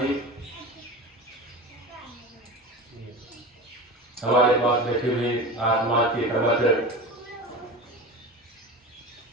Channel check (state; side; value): normal; both; correlation 0.30